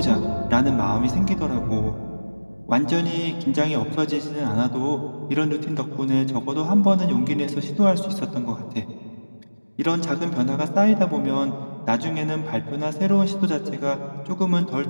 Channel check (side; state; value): both; inverted; correlation -1.00